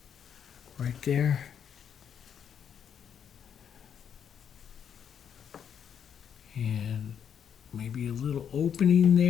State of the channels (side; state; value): right; quieter; 8.2 dB